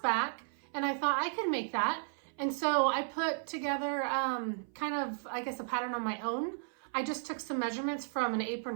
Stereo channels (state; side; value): silent; left; 55 dB below the other